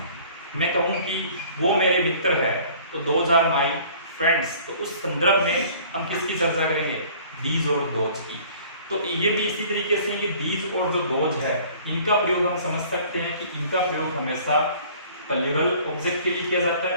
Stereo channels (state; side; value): inverted; both; correlation -0.51